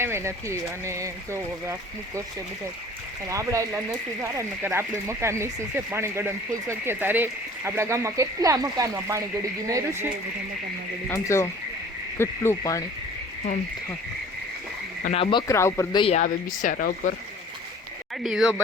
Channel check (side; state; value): both; normal; correlation 0.47